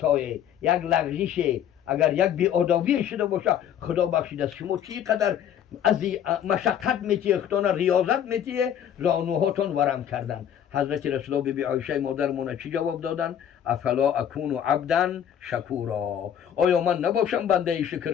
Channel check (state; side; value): quieter; right; 9.6 dB